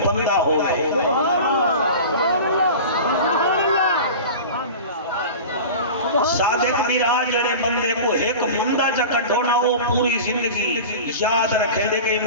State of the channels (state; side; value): inverted; both; correlation -0.34